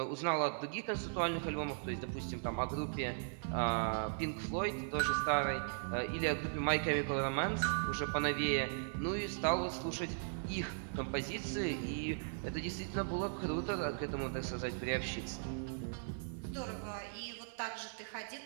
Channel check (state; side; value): silent; left; 52 dB below the other